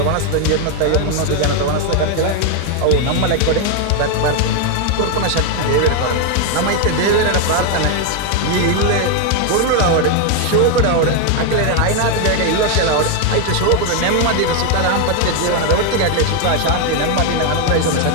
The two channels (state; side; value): different; both; correlation 0.01